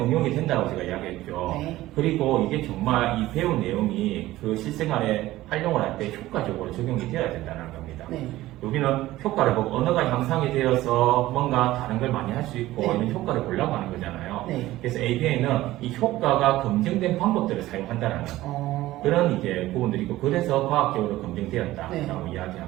응용이 된다고 제가 이야기했죠. 네. 그리고 이게 정말 이 배운 내용이 그 실생활에 활용을 할 때 효과적으로 적용이 되어야 된다는 겁니다. 네. 여기는 효과를 보고 언어가 향상이 되어서 뭔가 다른 걸 많이 할 수 있고 네. 이런 효과를 보려고 하는 거잖아요. 네. 그래서 ABA는 이 효과가 검증된 방법들을 사용한다는 그런 이제 부분들이고, 그래서 과학적으로 검증되었다라고 네.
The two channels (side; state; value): left; quieter; 16.3 dB